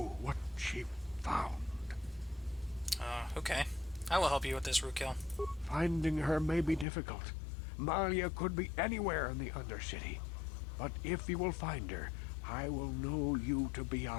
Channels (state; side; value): drops out; right; at 6.9 s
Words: what she found. Okay. I will help you with this, Rukil. Finding her may be difficult. Malia could be anywhere in the Undercity. But if you will find her, I will know you to be